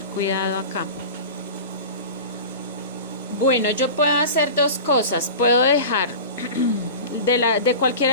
cuidado acá. Bueno, yo puedo hacer dos cosas. Puedo dejar de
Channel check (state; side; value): inverted; both; correlation -0.33